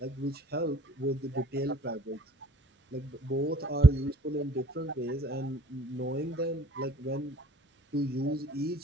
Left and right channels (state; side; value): normal; both; correlation 0.56